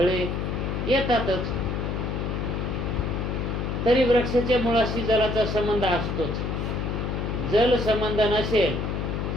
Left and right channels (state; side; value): noise; left; hum, 2 dB below the sound